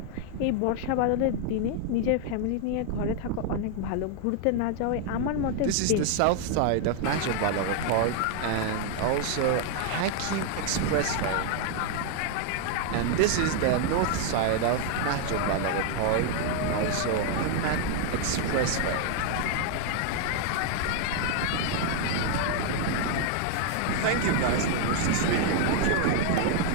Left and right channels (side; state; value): both; different; correlation 0.00